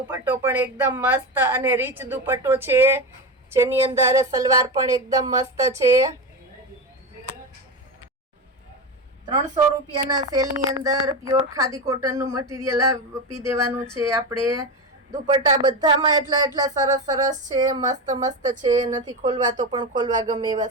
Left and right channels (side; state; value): both; normal; correlation 0.18